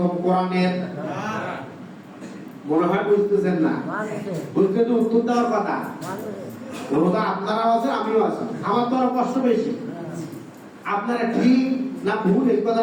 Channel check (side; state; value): both; identical; correlation 1.00